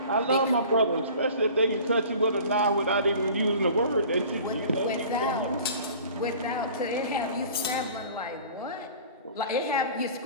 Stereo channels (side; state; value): both; inverted; correlation -0.44